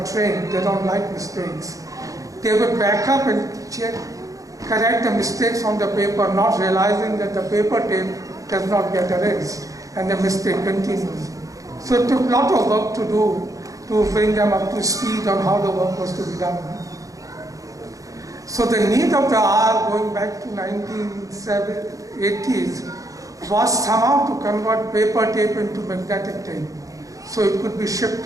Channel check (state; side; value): late; left; 0.16 ms